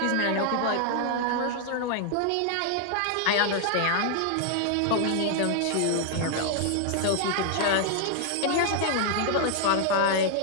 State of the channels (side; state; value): both; different; correlation -0.01